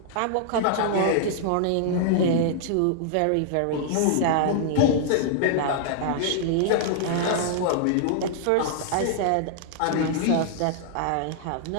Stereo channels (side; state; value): both; different; correlation -0.01